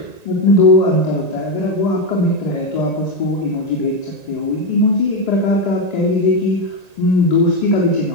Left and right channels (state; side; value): late; right; 1.9 ms